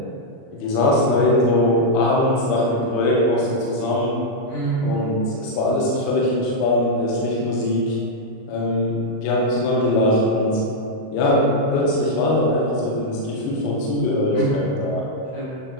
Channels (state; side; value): late; right; 38 ms